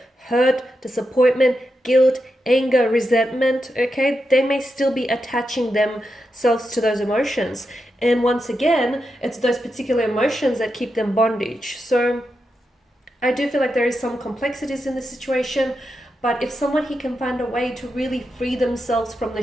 Hurt, disappointment, guilt, anger, resentment, okay? They may still be attaching themselves to those emotions. And once again, it's those particular emotions that keep them bondage. So I do feel like there is some complexities in this situation, but if someone here can find a way to really free themselves from the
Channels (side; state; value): both; normal; correlation 0.87